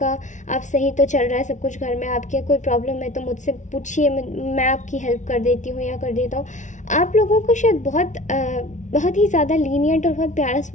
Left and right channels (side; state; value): right; late; 0.36 ms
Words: सही तो चल रहा है सब कुछ घर में, आपके कोई प्रॉब्लम है तो मुझसे पूछिए, मैं आपकी हेल्प कर देती हूँ या कर देता हूँ। आप लोगों को शायद बहुत ही ज़्यादा लीनियंट और बहुत प्यारा